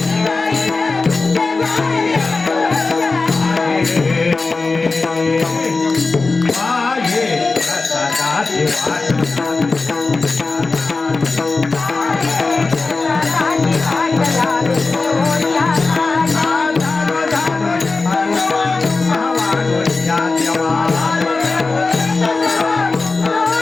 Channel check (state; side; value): quieter; right; 3.8 dB